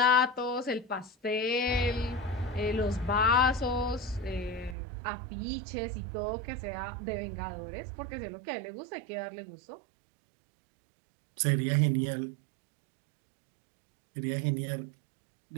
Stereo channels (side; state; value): left; drops out; at 4.8 s